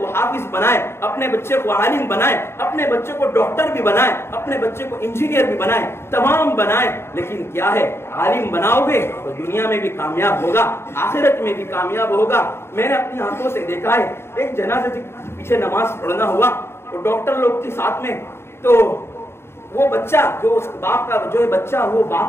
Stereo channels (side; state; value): right; late; 0.12 ms